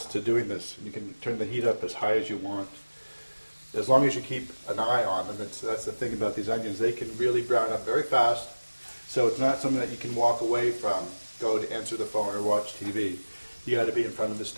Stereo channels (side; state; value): both; inverted; correlation -1.00